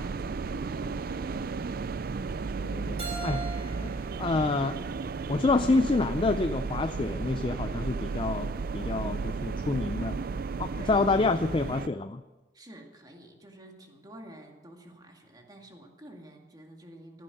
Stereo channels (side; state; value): both; normal; correlation 0.56